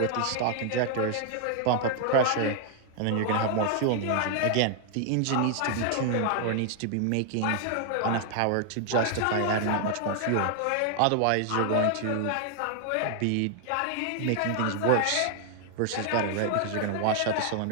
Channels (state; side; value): different; both; correlation 0.00